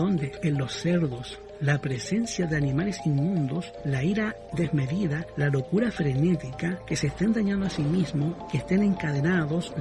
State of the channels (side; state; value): both; identical; correlation 1.00